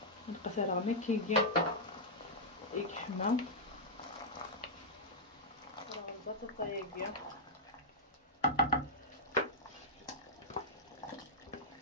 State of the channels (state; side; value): normal; both; correlation -0.08